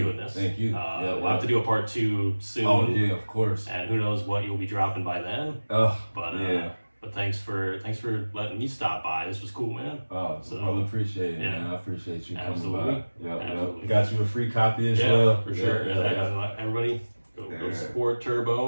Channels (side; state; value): both; inverted; correlation -1.00